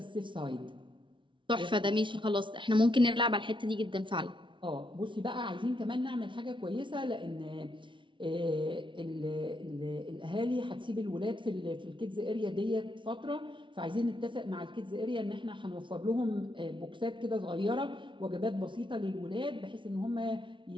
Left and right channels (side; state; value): left; late; 0.24 ms